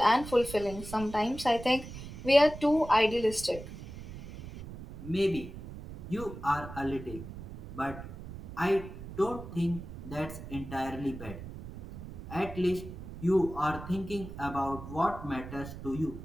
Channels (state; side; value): noise; right; rumble, 12 dB below the sound